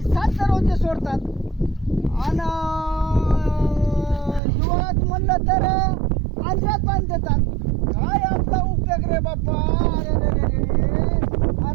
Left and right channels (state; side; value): drops out; left; at 4.4 s